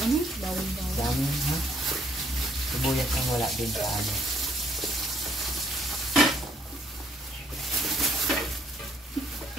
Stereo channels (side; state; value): both; normal; correlation 0.67